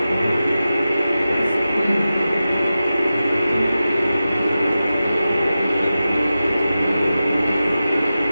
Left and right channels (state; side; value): inverted; both; correlation -0.93